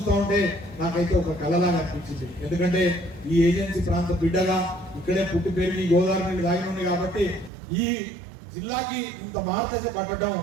ఉంటే నాకైతే ఒక కళలాగా అనిపించింది. ఎందుకంటే ఈ ఏజెన్సీ ప్రాంత బిడ్డగా ఇక్కడే పుట్టి పెరిగి గోదావరి నీళ్ళు దాగి ఉంది కాబట్టి ఈ జిల్లాకి ఇంత మార్గదశ పట్టడం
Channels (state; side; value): drops out; left; at 7.5 s